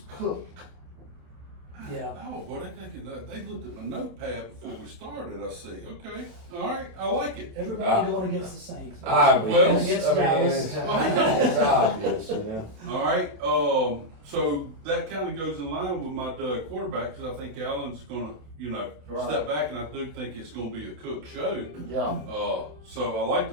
Cook. Yeah. Oh, boy, they looked at my notepad before we started, I see. Okay, all right, I like it. Everybody going against the Saints. Well, Against I mean, Dallas. it's obvious, you know. All right, so that kind of goes in line with my quarterback, because I think Allen's going to, Right. step back, and I do think it's going to be a Cook show. Yeah. So I like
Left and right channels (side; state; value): left; late; 27 ms